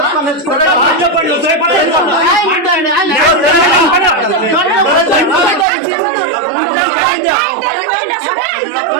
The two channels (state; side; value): drops out; left; at 5.7 s